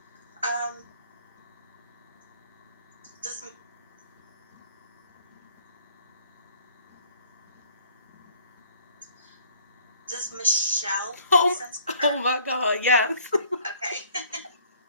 Does Michelle make sense for her? Oh my God, yes. Okay.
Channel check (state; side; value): inverted; both; correlation -0.58